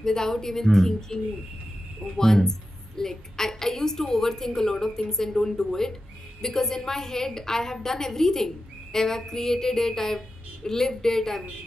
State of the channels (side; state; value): both; normal; correlation 0.91